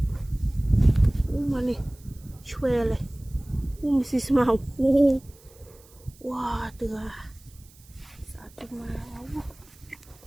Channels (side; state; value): right; noise; hiss, 26 dB below the sound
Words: mà nè choe này xí màu wow từ sao chúng mà